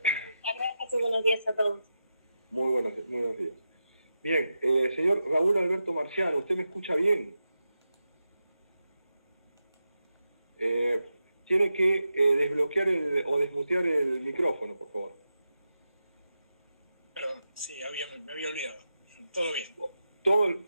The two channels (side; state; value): both; inverted; correlation -0.89